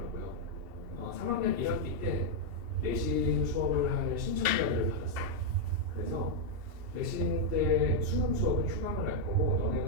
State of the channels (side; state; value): left; late; 2.7 ms